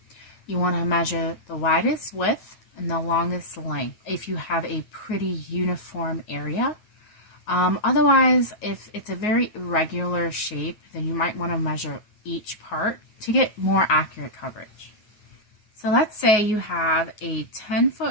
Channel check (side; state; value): right; late; 9.4 ms